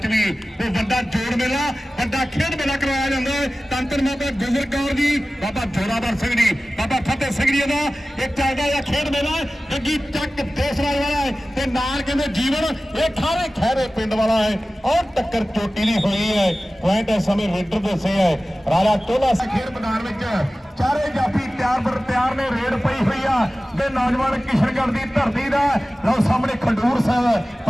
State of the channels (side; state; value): both; normal; correlation 0.96